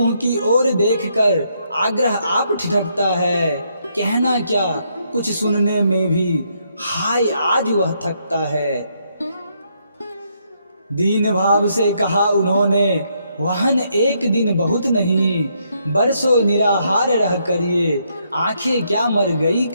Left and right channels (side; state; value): both; inverted; correlation -0.75